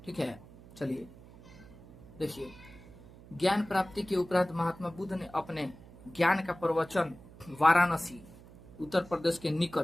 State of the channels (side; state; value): right; noise; hum, 20 dB below the sound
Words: ठीक है। चलिए देखिए, ज्ञान प्राप्ति के उपरांत महात्मा बुद्ध ने अपने ज्ञान का प्रवचन वाराणसी, उत्तर प्रदेश के